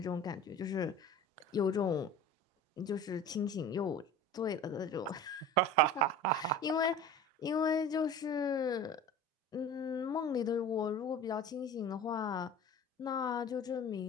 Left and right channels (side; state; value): both; normal; correlation 0.37